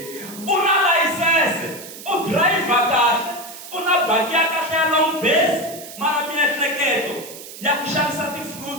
U na layisense, u driver kahle, u na baki ya kahle ya long base mara miehleketo ya ku xavisa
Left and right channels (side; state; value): right; noise; hiss, 14 dB below the sound